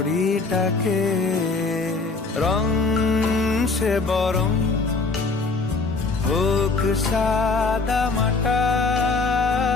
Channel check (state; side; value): quieter; right; 3.9 dB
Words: রং সে বরং হোক সাদা মাটা,